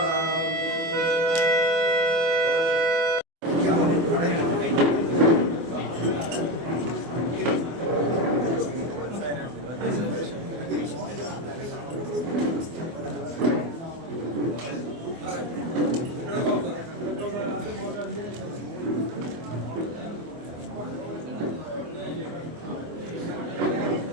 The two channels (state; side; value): late; left; 24 ms